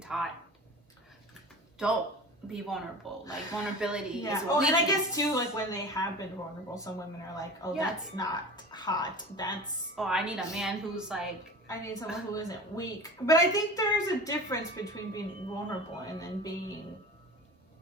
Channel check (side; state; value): both; normal; correlation 0.35